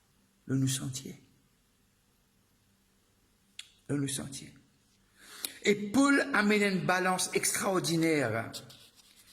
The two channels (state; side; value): identical; both; correlation 1.00